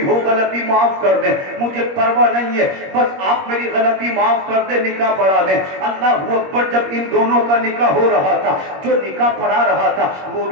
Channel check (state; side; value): late; left; 21 ms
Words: ہو غلطی معاف کر دیں, مجھے پرواہ نہیں ہے, بس آپ میری غلطی معاف کر دیں, نکاح پڑھا دیں. اللہ اکبر. جب ان دونوں کا نکاح ہو رہا تھا, جو نکاح پڑھا رہا تھا وہ